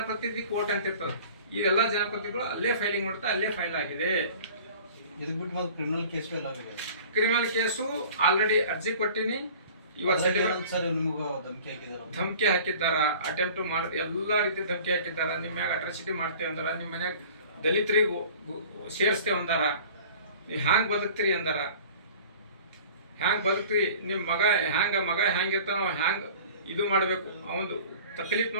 ಕೋರ್ಟ್ ಅಂತ ಇರ್ತದೆ. ಇದೆಲ್ಲ ಜನಪ್ರತಿನಿಧಿಗಳು ಅಲ್ಲೇ ಫೈಲಿಂಗ್ ಮಾಡ್ತಾ ಅಲ್ಲೇ ಫೈಲ್ ಆಗಿದೆ. ಕ್ರಿಮಿನಲ್ ಕೇಸು ಆಲ್ರೆಡಿ ಅರ್ಜಿ ಕೊಟ್ಟಿನಿ. ಧಮಕಿ ಹಾಕಿದ್ದಾರ, ಅಟೆಂಪ್ಟ್ ಮಾಡಿ ಎಲ್ಲ ರೀತಿ ಧಮಕಿ ಹಾಕಿದ್ದಾರ. ನಿಮ್ಮ ಮ್ಯಾಗ ಅಟ್ರಾಸಿಟಿ ಮಾಡ್ತೇವೆ ಅಂದಾರ, ನಿಮ್ಮ ಮನ್ಯಾಗ ದಲಿತರಿಗೂ ಸೇರಿಸ್ತೇವೆ ಅಂದಾರ, ನೀವು ಹ್ಯಾಂಗ್ ಬದುಕ್ತೀರಿ ಅಂದಾರ. ಹ್ಯಾಂಗ್ ಬದುಕ್ತೀರಿ, ನಿಮ್ಮ ಮಗ ಹ್ಯಾಂಗಿರ್ತಾನ ಹ್ಯಾಂಗ್ ಇದು ಮಾಡಬೇಕು, ಅವನು ತಕ್ಲೀಫ್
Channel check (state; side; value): inverted; both; correlation -0.44